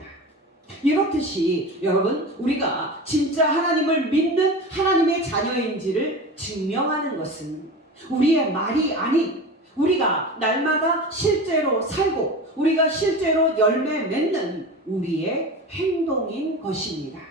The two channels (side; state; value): both; normal; correlation 0.30